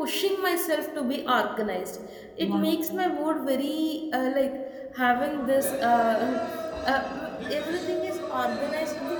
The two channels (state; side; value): identical; both; correlation 1.00